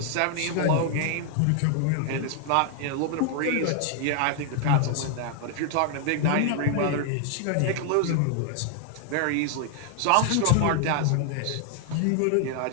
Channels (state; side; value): different; both; correlation 0.00